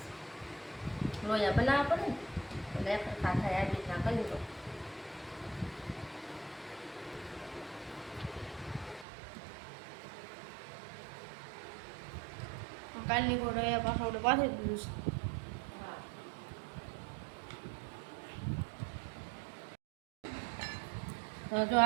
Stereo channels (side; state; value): left; drops out; at 9.1 s